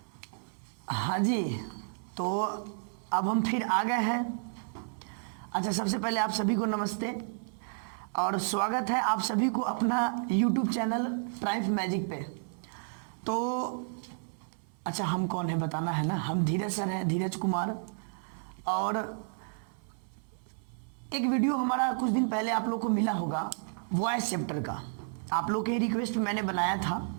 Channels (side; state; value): left; silent; 57 dB below the other